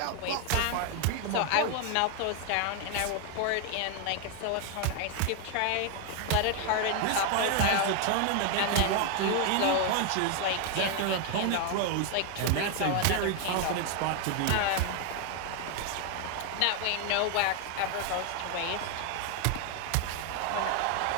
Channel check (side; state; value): both; different; correlation 0.01